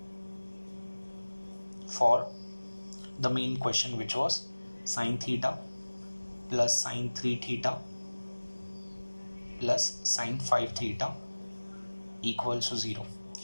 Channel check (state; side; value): inverted; both; correlation -1.00